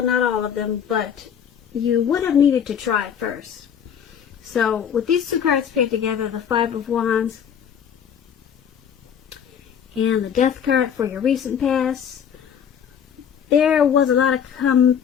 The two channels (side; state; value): right; quieter; 8.2 dB